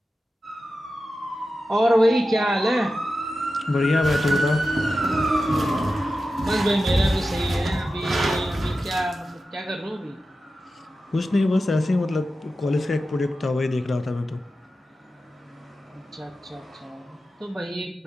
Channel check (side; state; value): both; normal; correlation 0.92